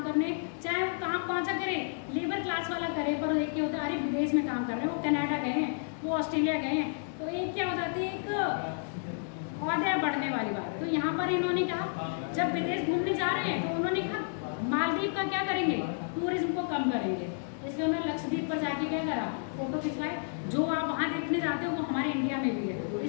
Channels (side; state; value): right; silent; digital silence